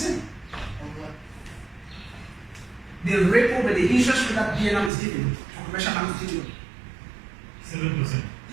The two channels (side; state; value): left; drops out; at 4.9 s